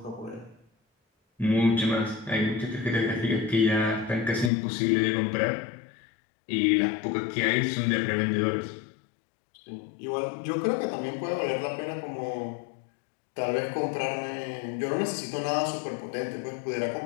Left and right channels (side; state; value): right; drops out; at 4.5 s